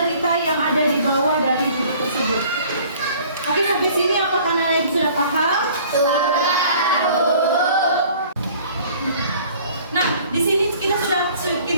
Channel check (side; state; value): both; inverted; correlation -0.52